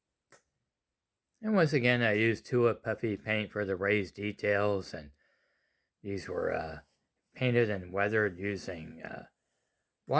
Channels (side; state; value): both; identical; correlation 1.00